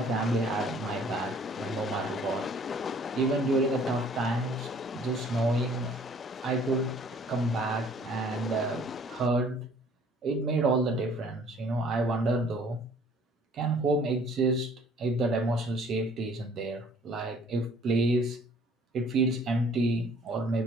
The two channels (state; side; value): normal; both; correlation 0.55